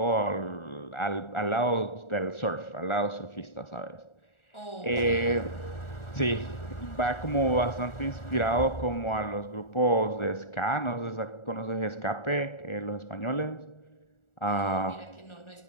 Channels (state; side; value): late; right; 1.4 ms